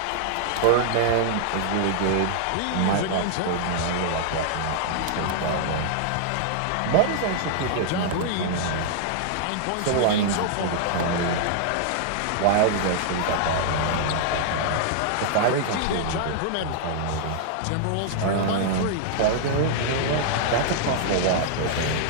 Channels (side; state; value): both; different; correlation -0.01